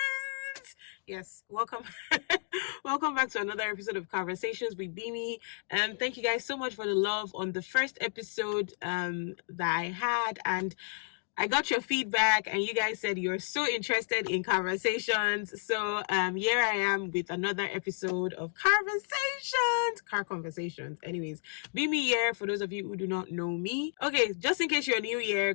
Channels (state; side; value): silent; right; digital silence